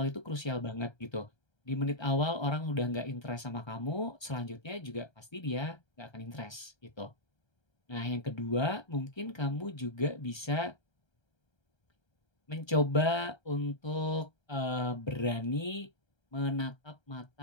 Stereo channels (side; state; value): right; late; 1.3 ms